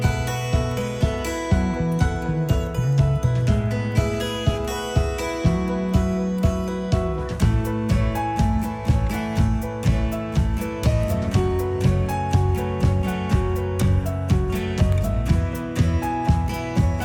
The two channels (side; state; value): both; identical; correlation 1.00